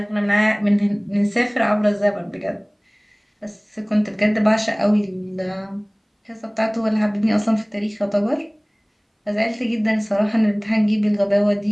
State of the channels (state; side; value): identical; both; correlation 1.00